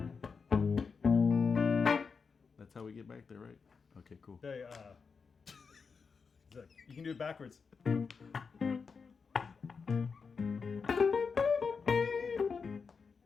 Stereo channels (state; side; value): quieter; right; 5.3 dB